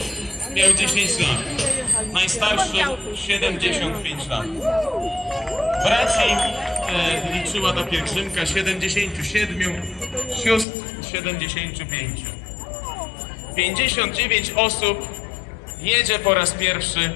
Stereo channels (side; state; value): right; drops out; at 10.7 s